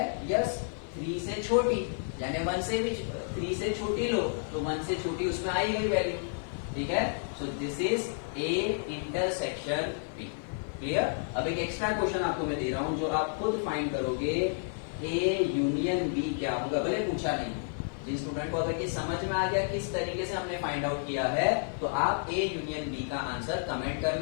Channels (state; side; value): silent; right; 57 dB below the other